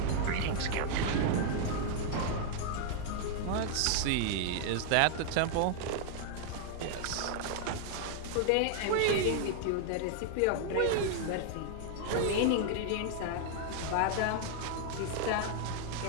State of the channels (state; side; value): different; both; correlation 0.00